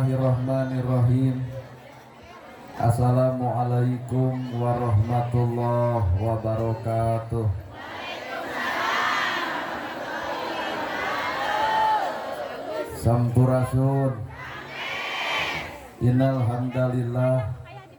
Assalamualaikum warahmatullahi wabarakatuh. Sampurasun. Innal hamdalillah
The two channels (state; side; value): identical; both; correlation 1.00